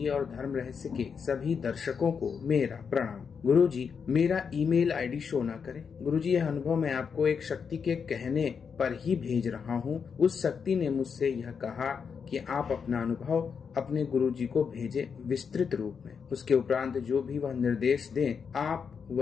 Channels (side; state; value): right; quieter; 6.3 dB